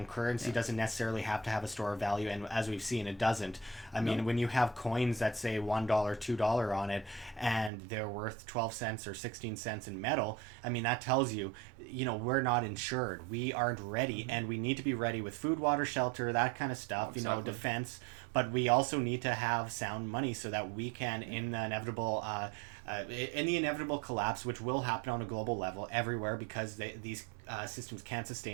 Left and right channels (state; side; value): drops out; left; at 7.7 s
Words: currency doesn't necessarily have to have a store of value, and as we've seen, it doesn't. I mean, when you have coins that say $1, $2 on it, and they're worth 12 cents or 16 cents in metal, I mean, that tells you, we're not insured. We aren't ready, and we need to be ready with food, water, shelter, that kind of stuff, defense. But we also need to have sound money so that we can, in the inevitable collapse, which will happen on a global level everywhere, because these systems can't